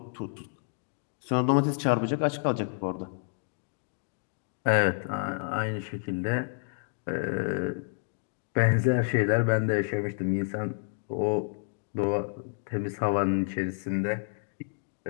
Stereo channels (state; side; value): silent; right; digital silence